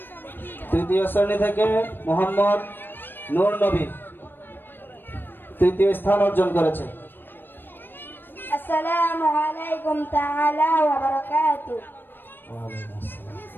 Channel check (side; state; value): right; late; 0.096 ms